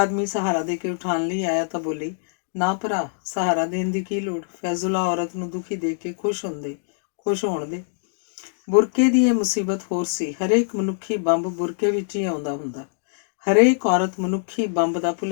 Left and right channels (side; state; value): right; silent; digital silence